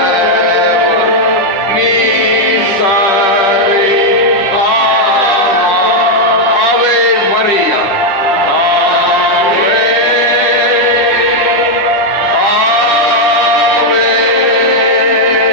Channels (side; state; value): right; late; 10 ms